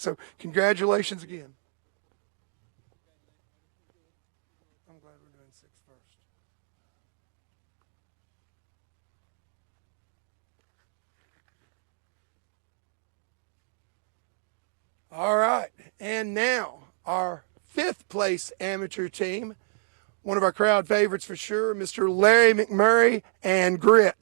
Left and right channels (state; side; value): silent; left; digital silence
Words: congratulations again. I'm glad we're doing 6 first. All right, and now our 5th place amateur team, one of our crowd favorites for sure, Mr. Larry McMurray and